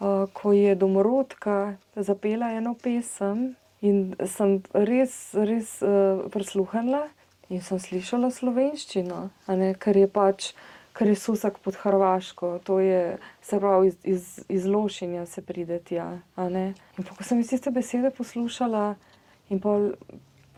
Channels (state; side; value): identical; both; correlation 1.00